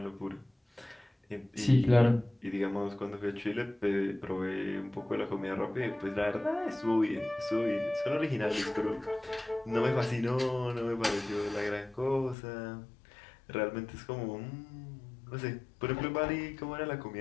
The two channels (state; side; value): drops out; right; at 12.4 s